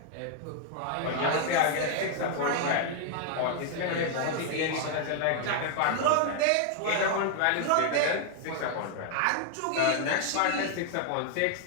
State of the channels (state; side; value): different; both; correlation 0.00